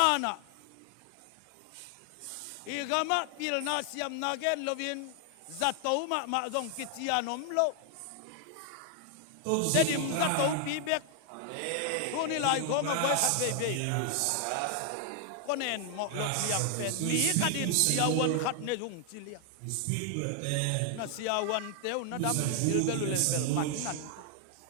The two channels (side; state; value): both; different; correlation 0.00